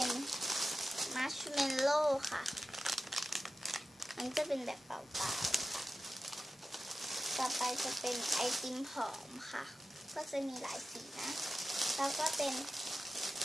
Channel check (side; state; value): both; normal; correlation 0.94